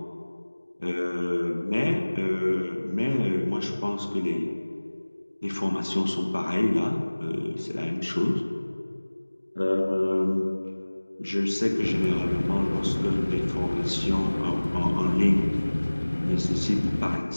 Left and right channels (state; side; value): inverted; both; correlation -1.00